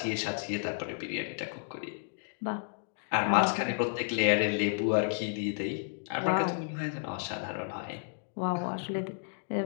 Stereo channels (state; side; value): silent; right; digital silence